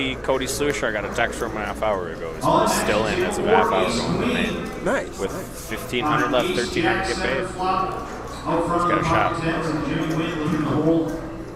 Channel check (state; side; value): identical; both; correlation 1.00